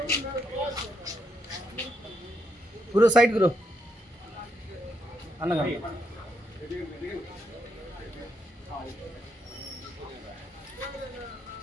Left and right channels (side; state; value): both; normal; correlation 0.78